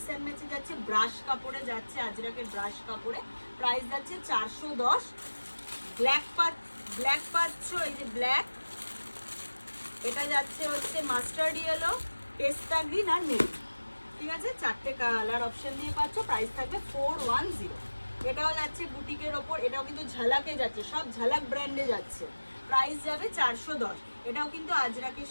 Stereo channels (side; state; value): both; inverted; correlation -1.00